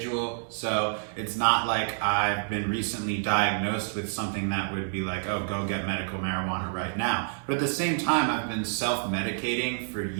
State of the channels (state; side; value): silent; left; 59 dB below the other